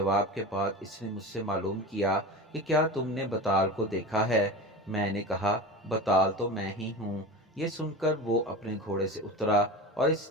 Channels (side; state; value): both; normal; correlation 0.30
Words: के बाद इसने मुझसे मालूम किया कि क्या तुमने बताल को देखा है। मैंने कहा, बताल तो मैं ही हूँ। ये सुनकर वो अपने घोड़े से उतरा और